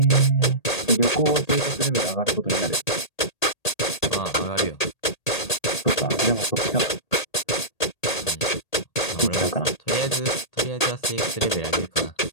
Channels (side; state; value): right; late; 1.8 ms